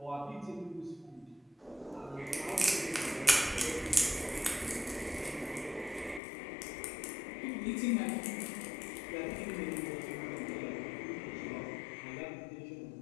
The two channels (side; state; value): right; drops out; at 6.2 s